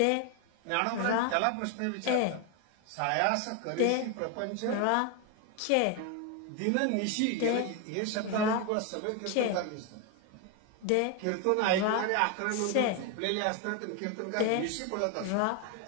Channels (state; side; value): different; both; correlation 0.01